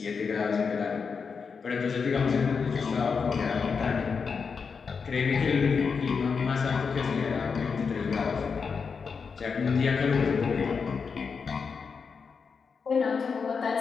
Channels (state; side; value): quieter; right; 5.6 dB